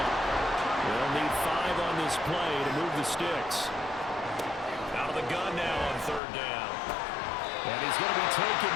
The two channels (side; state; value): right; drops out; at 6.2 s